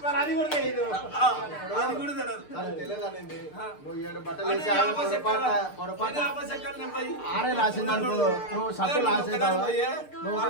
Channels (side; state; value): right; late; 6.7 ms